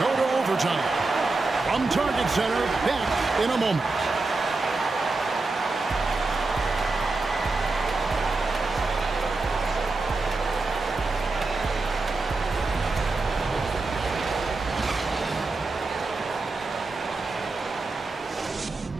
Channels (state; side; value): quieter; left; 3.5 dB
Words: to overtime. From Target Center, back in a moment.